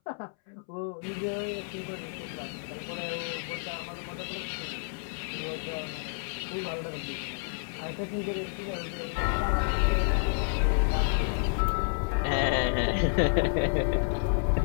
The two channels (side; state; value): right; silent; 58 dB below the other